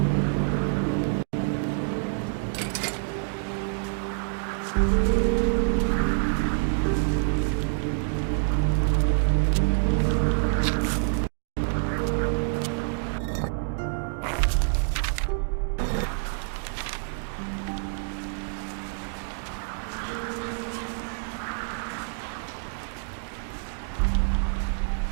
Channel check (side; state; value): left; silent; 60 dB below the other